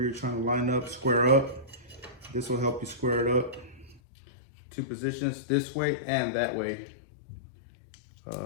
you're trying to line up, square up. This will help you square it up. Two positions, this way and that way.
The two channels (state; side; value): drops out; right; at 4.0 s